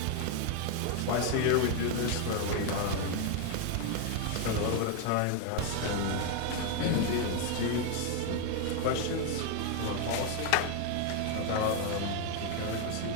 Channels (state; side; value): different; both; correlation 0.01